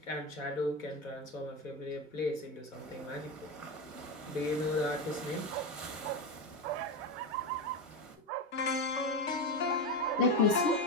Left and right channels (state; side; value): normal; both; correlation 0.15